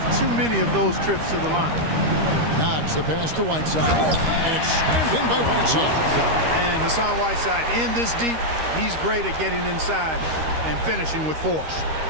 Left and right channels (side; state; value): left; late; 13 ms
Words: too many of those trips to the line. Knox the pass to Whiteside, and it's slammed in by Whiteside. And Hassan Whiteside in this deep, he's great at getting inside and finishing with force.